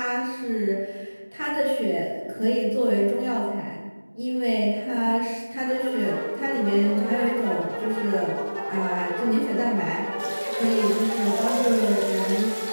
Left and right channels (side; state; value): both; inverted; correlation -1.00